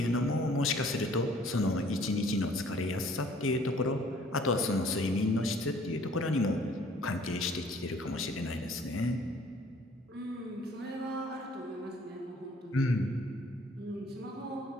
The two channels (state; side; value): normal; both; correlation 0.56